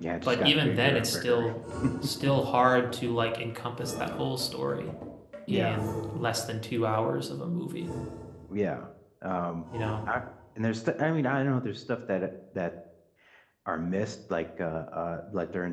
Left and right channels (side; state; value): both; identical; correlation 1.00